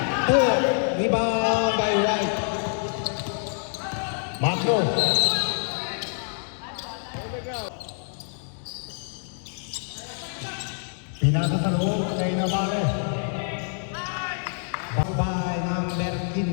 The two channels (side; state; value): right; silent; 61 dB below the other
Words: 2. Rebound by White. Macro. Nabuo kay Navarre. By number